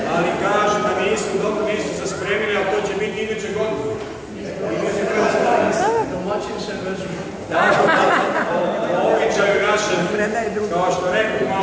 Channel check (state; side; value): identical; both; correlation 1.00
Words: Ali kaže da nisu se spremili, a to će biti iduće godine. Običaju našem, kao što rekao